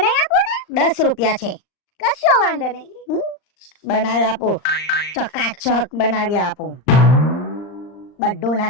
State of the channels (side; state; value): right; late; 39 ms